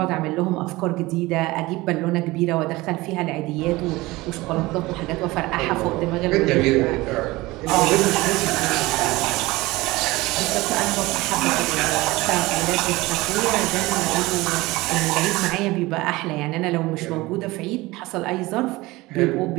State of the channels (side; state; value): left; quieter; 20.5 dB